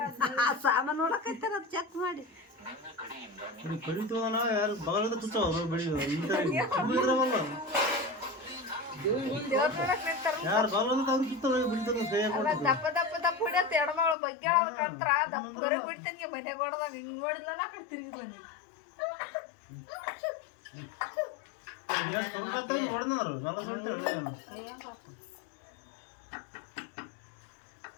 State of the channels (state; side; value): drops out; right; at 14.2 s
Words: ಸಾಮಾನು ನೋಡಕೈತಾರ ಚೆಕ್ ಮಾಡಿ ಕಡಿತವನ ಯಾರು ಬಗಲದ ತುಚ್ಚವ ಯಾರು ಬಗಲದ ಅವ್ರು ತುತ್ತವ ಬಿಡ್ತಾರ ದಪ್ಪ ದಪ್ಪ ದಪ್ಪ ಹೊಡಿಯತ್ತ ಎಡಮಗಳು ಬಗ್ಗೆ ಕಂತ್ರ ದಪ್ಪ ಬರ ಬಿಡ್ತೇನೆ ಮನೆ ಕೊಡದಾಗ ಹಿಂಗ್ ನೋಡಿಲ್ಲ ನಾ ಕಡೆ ತಿರುಗಿಲ್ಲ ನೋಡಿದ್ರು ನಲ್ಲ ಸುಳ್ಳು